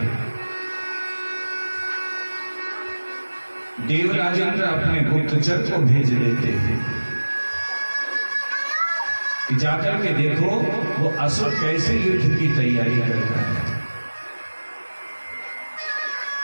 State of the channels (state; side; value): inverted; both; correlation -1.00